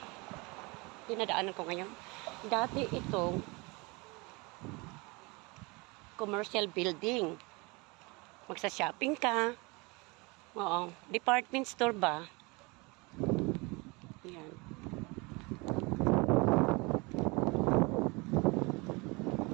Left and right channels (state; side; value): quieter; left; 26.8 dB